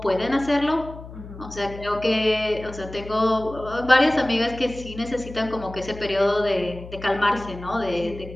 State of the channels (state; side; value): noise; left; hum, 14 dB below the sound